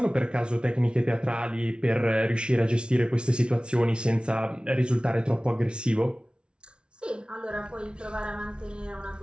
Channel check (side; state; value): left; late; 0.057 ms